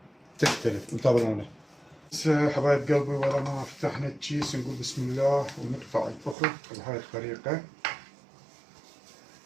تختلف، انتظرونا. بس حبايب قلبي، ولا ما فتحنا الكيس نقول بسم الله ونقطع الفخذ بهاي الطريقة.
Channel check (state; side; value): drops out; left; at 6.4 s